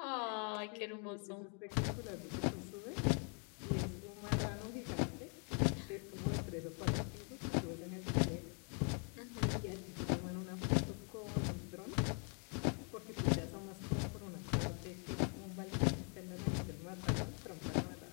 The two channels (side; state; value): right; quieter; 39.4 dB